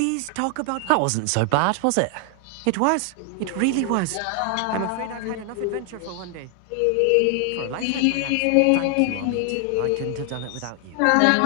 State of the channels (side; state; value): both; different; correlation 0.00